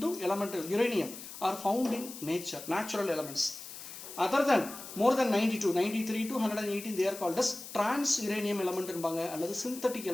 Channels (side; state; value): left; noise; hiss, 12 dB below the sound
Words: to element uranium, are found in nature, natural elements. Other than more than 92, 93 to 118, they are called as trans-uranium element or synthetic